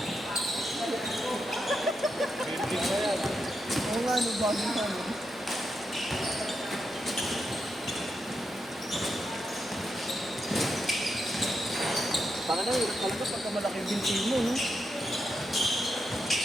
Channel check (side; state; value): both; normal; correlation 0.84